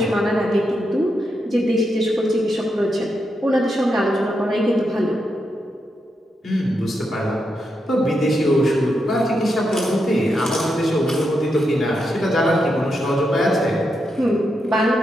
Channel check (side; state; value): both; normal; correlation 0.84